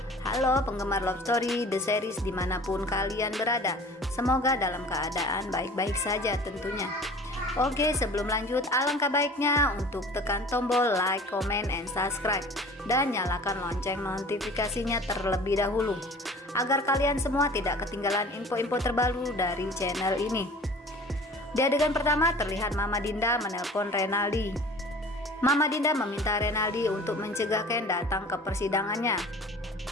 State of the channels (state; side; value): normal; both; correlation 0.44